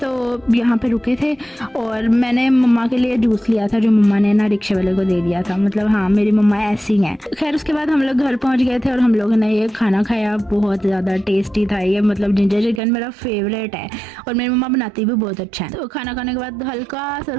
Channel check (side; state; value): left; drops out; at 12.8 s